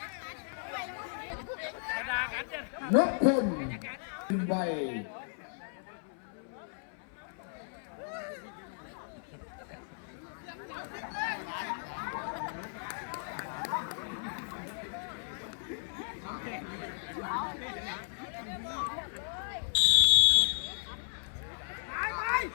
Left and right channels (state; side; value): silent; right; 55 dB below the other